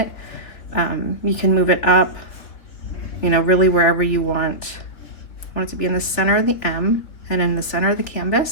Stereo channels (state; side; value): late; right; 3.8 ms